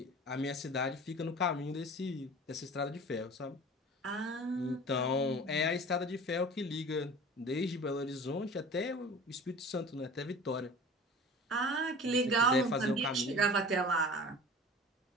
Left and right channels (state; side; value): normal; both; correlation 0.40